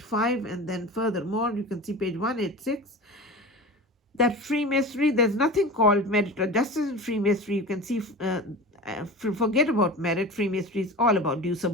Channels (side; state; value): both; normal; correlation 0.33